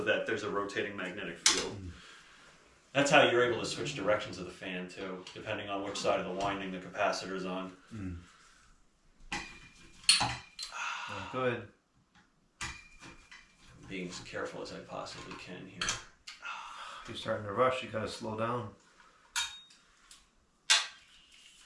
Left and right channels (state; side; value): identical; both; correlation 1.00